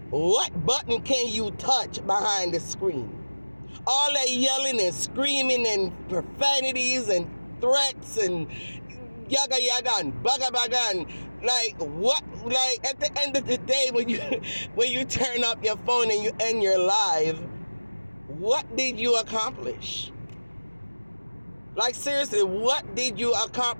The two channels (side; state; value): both; inverted; correlation -1.00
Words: what button can you touch behind the screen? All that yelling and screaming and profanities and threats and yaga yaga and baga baga and like what? Like at the end of the day, when you turn up your phone and you end your live, what did you accomplish? Like seriously, what did you